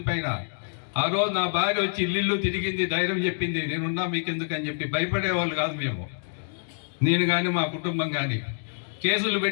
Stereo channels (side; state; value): right; silent; digital silence